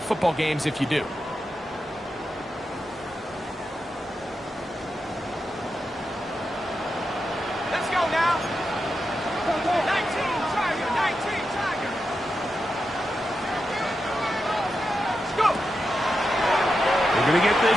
football games if you do. Let's go now. 19, Tiger, 19, Tiger. Let's go. We're going to get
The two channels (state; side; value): normal; both; correlation 0.88